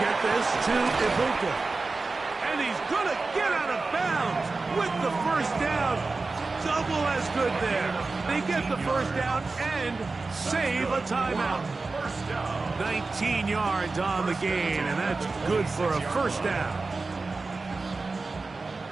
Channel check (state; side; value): quieter; left; 3.8 dB